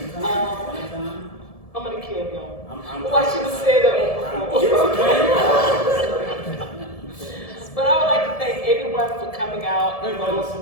I'm gonna kill him. I'm. Well, I should have said that before. But I would like to thank everyone for coming out. Wait,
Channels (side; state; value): right; late; 1.7 ms